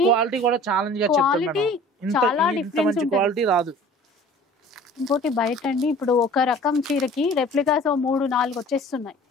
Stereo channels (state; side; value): normal; both; correlation 0.47